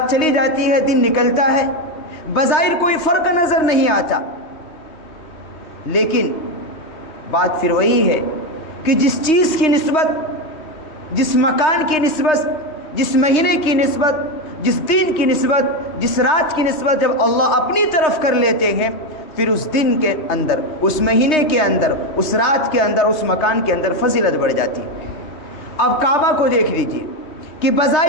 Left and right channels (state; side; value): late; right; 3.3 ms